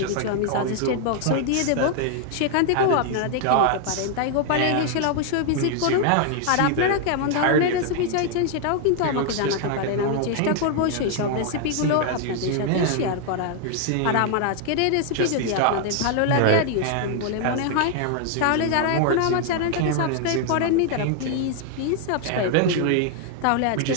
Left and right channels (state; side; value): different; both; correlation 0.00